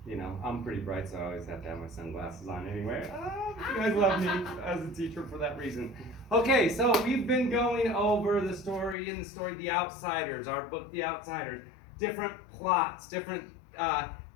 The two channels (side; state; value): right; drops out; at 9.0 s